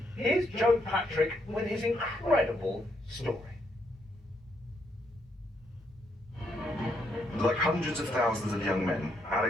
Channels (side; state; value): both; normal; correlation 0.76